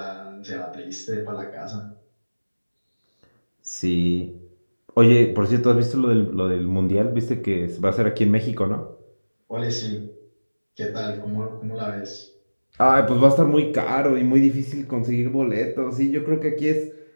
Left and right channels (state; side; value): inverted; both; correlation -1.00